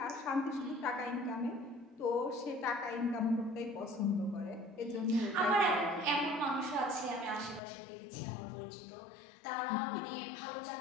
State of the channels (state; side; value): drops out; right; at 7.6 s